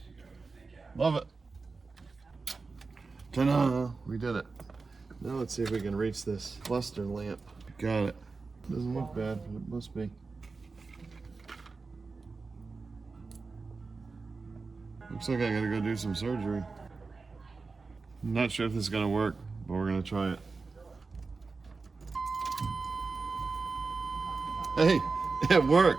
Love it. Ta-da! We did it. Now let's see if we can reach this cluster lamp. Got it. Doesn't look bad, but it must be. Looks like I gotta go do some surgery. I'm not sure if this is gonna work, but we're gonna try it. Hey, it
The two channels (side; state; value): left; quieter; 4.2 dB